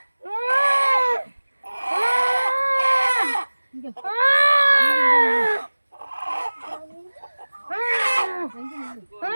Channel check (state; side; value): inverted; both; correlation -1.00